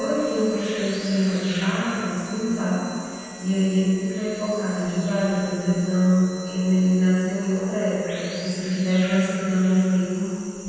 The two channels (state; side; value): identical; both; correlation 1.00